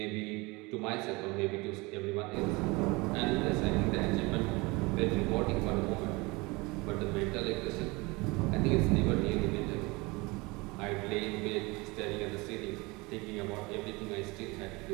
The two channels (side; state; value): left; quieter; 24.8 dB